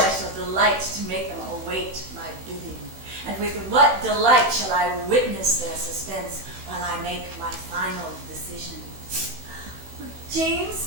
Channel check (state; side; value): late; left; 16 ms